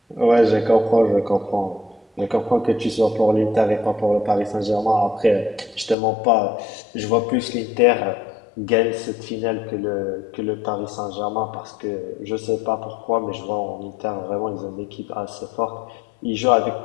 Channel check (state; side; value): drops out; right; at 6.0 s